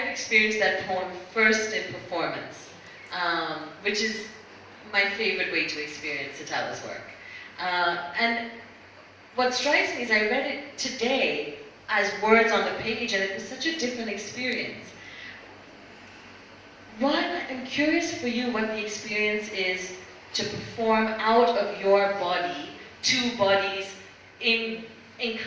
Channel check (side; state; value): both; identical; correlation 1.00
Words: experienced that poem first in performance, which is my favorite way to experience Sitawa's work. And what strikes me is I read it today as words on the page, and it was such a different experience. One, I'm curious for you what the experience is to perform out of your body, two bodies in